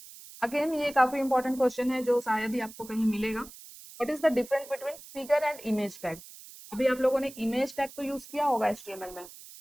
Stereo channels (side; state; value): right; noise; hiss, 17 dB below the sound